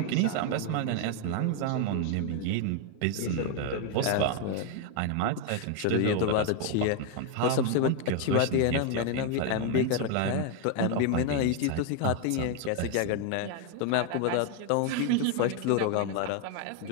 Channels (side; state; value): both; different; correlation 0.01